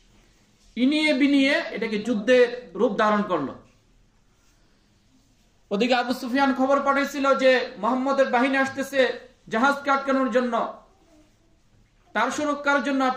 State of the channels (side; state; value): both; identical; correlation 1.00